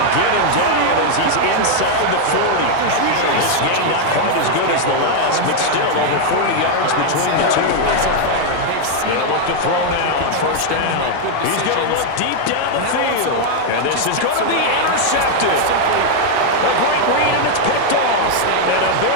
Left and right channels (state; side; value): different; both; correlation 0.00